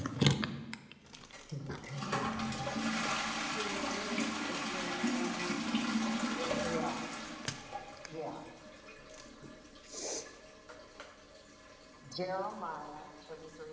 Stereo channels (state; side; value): identical; both; correlation 1.00